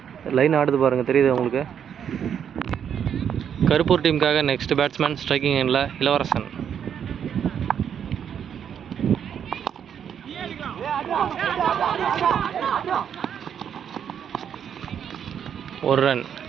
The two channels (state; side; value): quieter; left; 8.4 dB